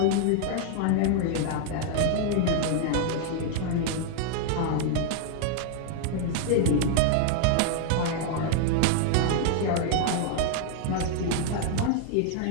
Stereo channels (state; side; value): different; both; correlation 0.00